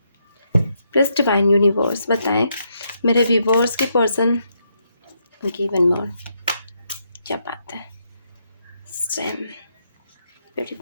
Please divine universe बताएं मेरे व्यूवर्स के पर्सन। ओके, वन मोर, क्या बात है, सेम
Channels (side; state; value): both; inverted; correlation -0.78